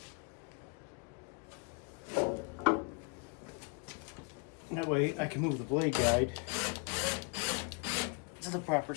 That way I can move the blade guide to the proper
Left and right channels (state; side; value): quieter; right; 35.7 dB